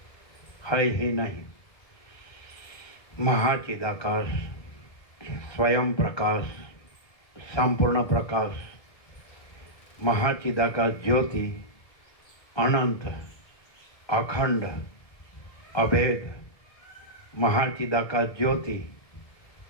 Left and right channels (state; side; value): late; right; 1.7 ms